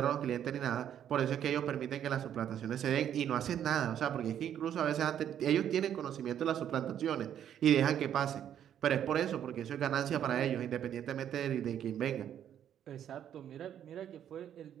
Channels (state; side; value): quieter; left; 9.9 dB